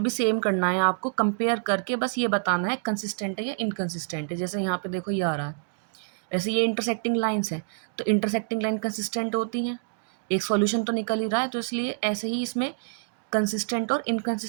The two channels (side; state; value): left; silent; digital silence